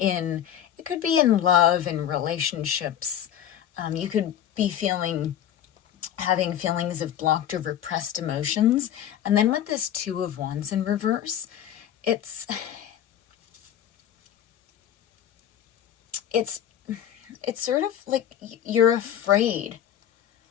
could be in love and relationships. You could be having feelings of blocked or repressed emotions. And then with this Two of Wands in reverse, it's sort of like you're afraid.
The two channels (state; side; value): quieter; right; 10.3 dB